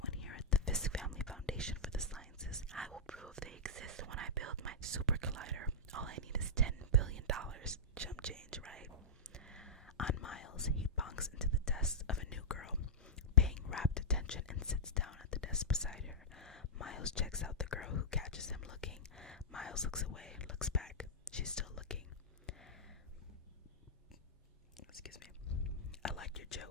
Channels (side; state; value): both; normal; correlation -0.11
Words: here at the Fisk Family Foundation for the Sciences, I will prove they exist when I build my super collider. All I need is $10 billion. Chump change, right? On Miles. desk beside her. Miles checks out the girl who catches him looking. Miles looks away, looks back. She's still looking. Excuse me. I liked your